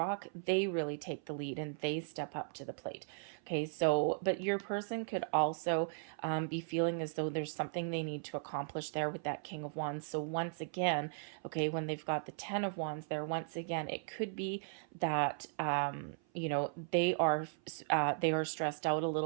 they really take the lead and they step up to the plate. Okay, so, but your person could also be feeling as though there's something they need to accomplish there with that King of Wands. So once again, okay, when they've got the Ten of Wands there, once again, it could be that they are stressed out a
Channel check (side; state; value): left; silent; 53 dB below the other